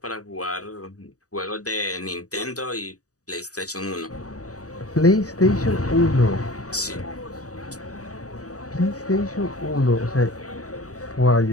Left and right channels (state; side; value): late; right; 0.66 ms